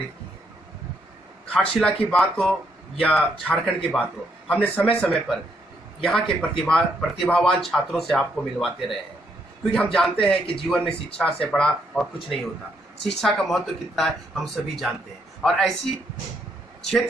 की है। घाटशिला की बात हो या झारखंड की बात हो, हमने समय समय पर यहाँ के प्रतिभावान छात्रों से आपको मिलवाते रहे हैं, क्योंकि हम जानते हैं कि जीवन में शिक्षा से बड़ा और कुछ नहीं होता। शिक्षा का महत्व कितना है हम सभी जानते हैं, और ऐसी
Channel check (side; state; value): both; normal; correlation 0.74